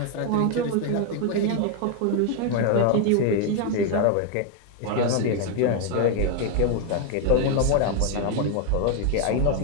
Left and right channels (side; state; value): both; different; correlation 0.01